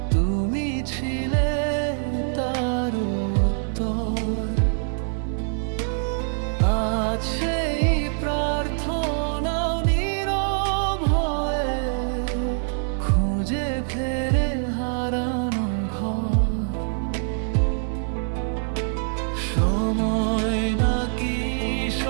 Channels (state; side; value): silent; left; 62 dB below the other